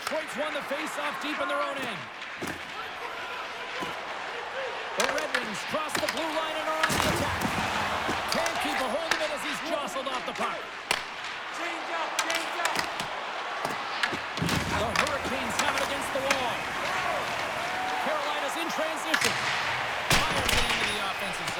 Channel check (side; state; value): both; identical; correlation 1.00